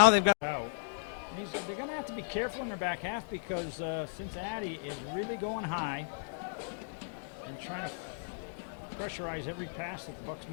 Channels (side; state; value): right; silent; digital silence